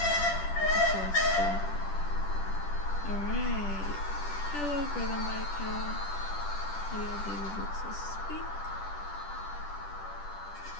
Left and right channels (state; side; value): late; right; 10 ms